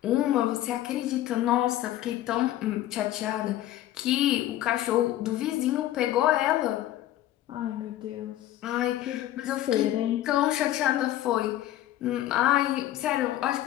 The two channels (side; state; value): right; quieter; 13.7 dB